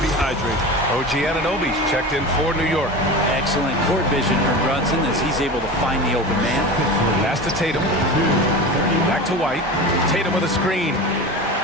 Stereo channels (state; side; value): normal; both; correlation 0.30